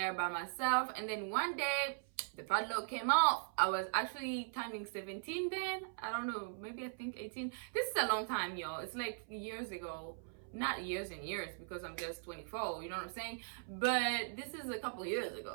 by myself. And then one day, the padlock came off. I was actually turning 17 then. I don't know, maybe I think 18. This is a long time, y'all. It's like years ago. Not years and years, because I'm just 24, you know what I'm saying? But this is a couple years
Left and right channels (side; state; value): left; silent; 51 dB below the other